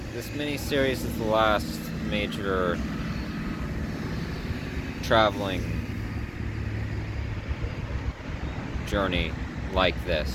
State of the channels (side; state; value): both; identical; correlation 1.00